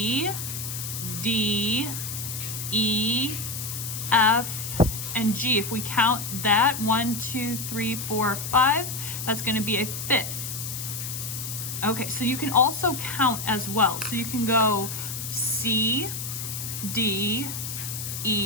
D, E, F, and G. If we count that, 1, 2, 3, 4, 5, that's going to be a fifth. Okay, so you can also count as well. So you can go C, D,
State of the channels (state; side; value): noise; left; hiss, 6 dB below the sound